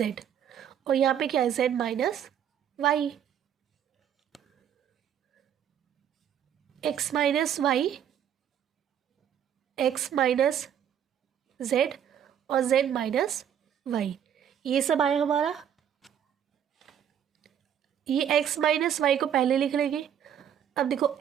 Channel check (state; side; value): quieter; left; 9.2 dB